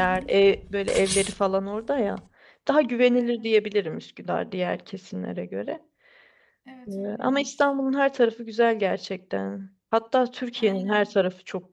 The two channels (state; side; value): identical; both; correlation 1.00